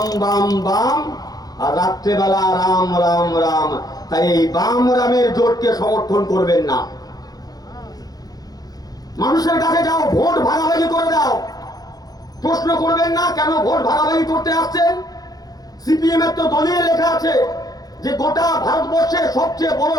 বাম বাম, আর রাত্রেবেলা রাম রাম রাম। তাই এই বাম রামের জোটকে সমর্থন করবেন না। মানুষের কাছে যাও, ভোট ভাগাভাগি করে দাও। প্রশ্ন করবেন না কেন ভোট ভাগাভাগি করতে আসছেন। সিপিএম এর তো দলীয় লেখা আছে যে গোটা ভারতবর্ষের সবচেয়ে বড়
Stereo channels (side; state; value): right; late; 0.19 ms